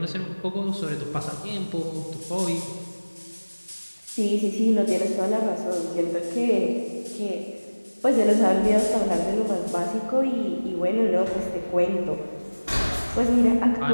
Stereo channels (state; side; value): inverted; both; correlation -1.00